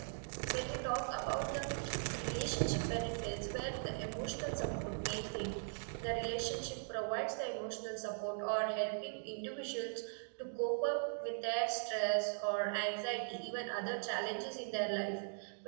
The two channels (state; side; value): silent; left; digital silence